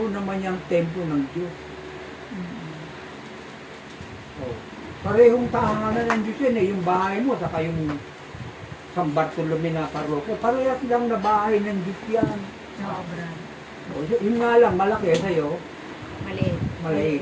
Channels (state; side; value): identical; both; correlation 1.00